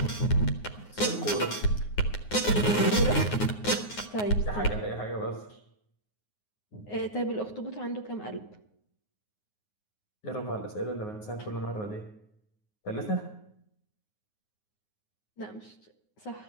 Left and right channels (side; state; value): right; late; 9.6 ms